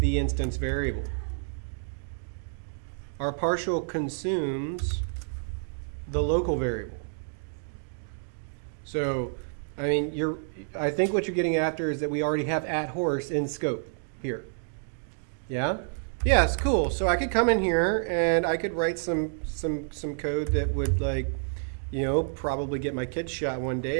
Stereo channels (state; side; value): silent; left; digital silence